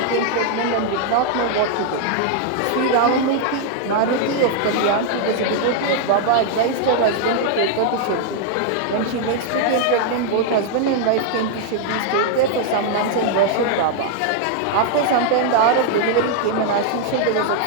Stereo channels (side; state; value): both; different; correlation 0.00